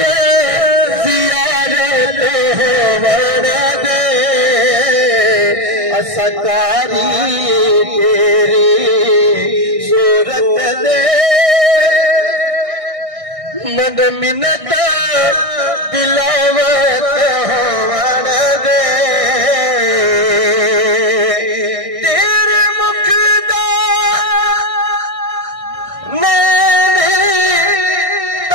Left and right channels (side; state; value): left; late; 1.6 ms